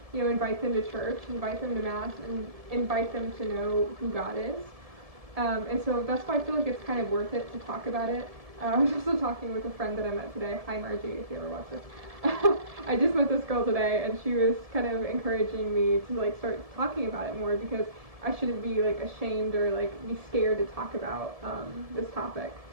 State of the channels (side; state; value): left; late; 1.7 ms